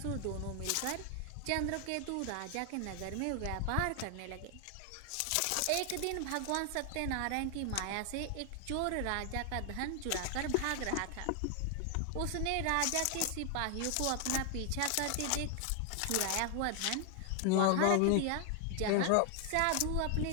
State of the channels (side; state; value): both; different; correlation 0.00